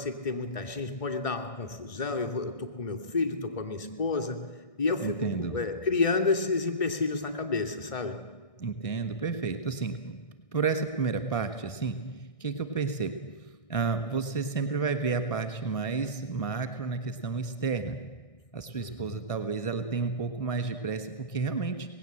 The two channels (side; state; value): right; late; 1.6 ms